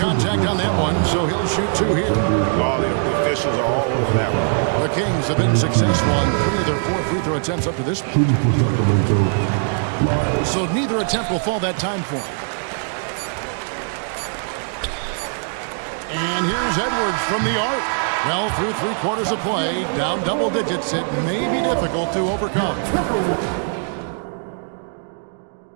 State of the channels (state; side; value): silent; left; 65 dB below the other